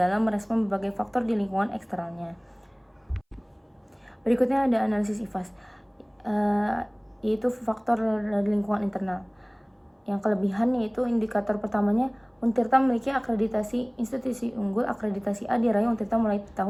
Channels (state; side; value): identical; both; correlation 1.00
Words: merespon berbagai faktor di lingkungan eksternalnya. Berikutnya ada analisis IFAS, yaitu faktor dari lingkungan internal. Yang kelebihan yaitu indikator pertamanya, Untirta memiliki akreditasi institusi unggul akreditasi A diraih Untirta mulai